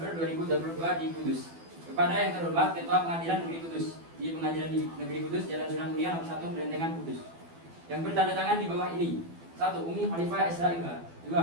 2022 di Kudus. Kepada yang terhormat Ketua Pengadilan Negeri Kudus di Pengadilan Negeri Kudus Jalan Sunan Mulia nomor 1 Berentengan Kudus. Yang bertanda tangan di bawah ini: 1. Umi Khalifah SH.MH.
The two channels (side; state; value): left; late; 12 ms